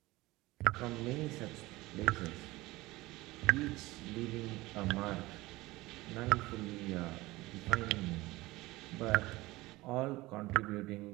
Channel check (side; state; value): left; quieter; 19.8 dB